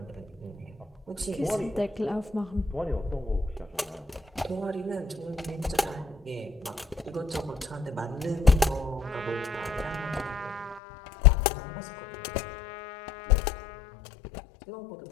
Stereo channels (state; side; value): drops out; right; at 10.8 s